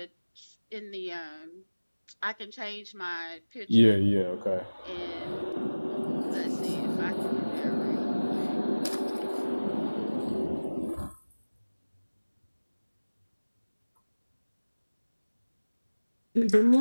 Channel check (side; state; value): both; inverted; correlation -1.00